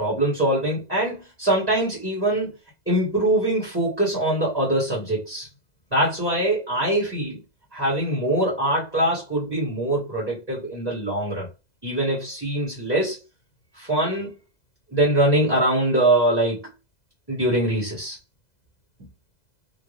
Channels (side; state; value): right; late; 2.0 ms